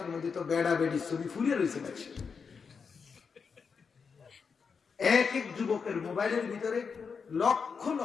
মধ্যে তো বেড়া বেড়ি ছবি ফুলে রয়েছে। এক এক যুবকের মোবাইলের ভিতরে লক্ষ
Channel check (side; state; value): right; quieter; 5.7 dB